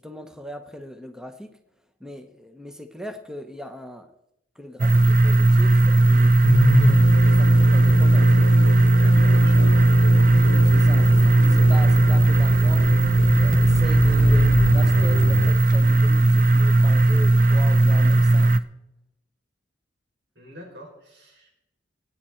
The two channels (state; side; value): normal; both; correlation 0.95